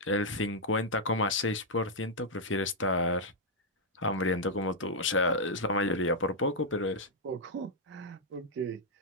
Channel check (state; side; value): normal; both; correlation -0.04